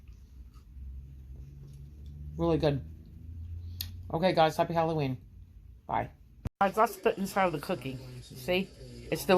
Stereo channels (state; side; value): identical; both; correlation 1.00